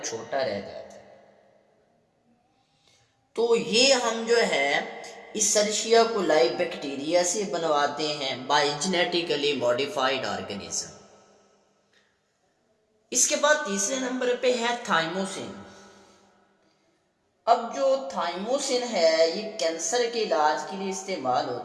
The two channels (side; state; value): both; identical; correlation 1.00